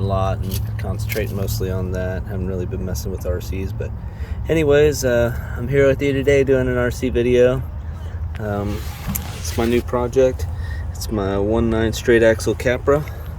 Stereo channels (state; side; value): identical; both; correlation 1.00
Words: lot and concentrating mostly on that. Haven't really been messing with RCs, but anyways, I'm here with you today doing an RC video. It's my new project. It's my 1.9 straight axle Capra.